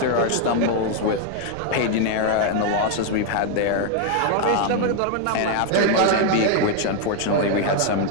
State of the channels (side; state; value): both; different; correlation 0.01